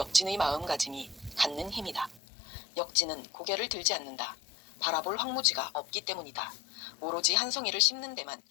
마음가짐이 갖는 힘이다. 역진은 고개를 들지 않는다. 바라볼 황무지가 없기 때문이다. 오로지 한 송이를 심는 데만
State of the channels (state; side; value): drops out; right; at 2.2 s